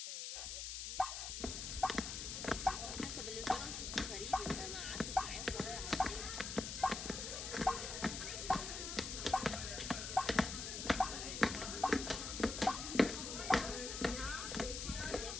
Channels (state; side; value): noise; left; hiss, 5 dB below the sound